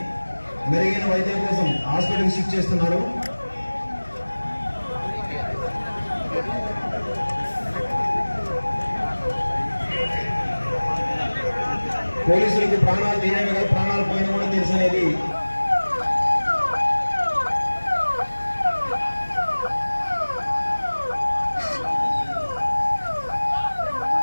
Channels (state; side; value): inverted; both; correlation -1.00